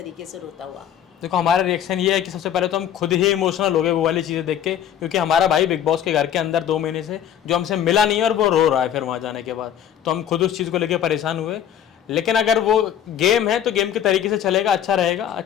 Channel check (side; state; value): right; quieter; 9.9 dB